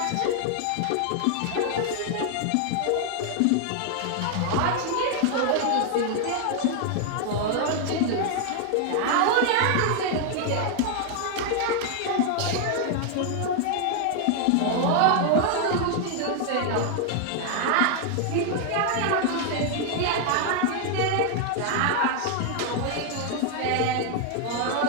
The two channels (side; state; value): both; different; correlation 0.00